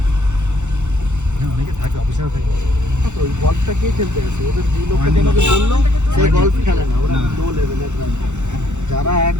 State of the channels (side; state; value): left; late; 0.83 ms